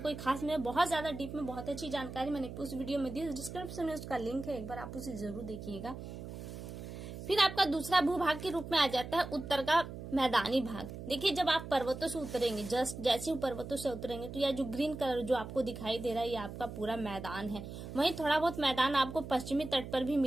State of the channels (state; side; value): noise; right; hum, 10 dB below the sound